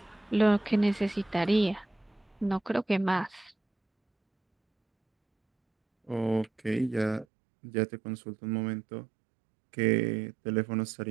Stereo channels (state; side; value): drops out; left; at 7.2 s